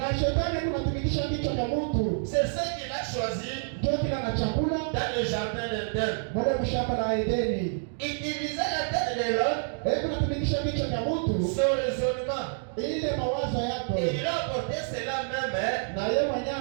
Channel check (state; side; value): silent; left; digital silence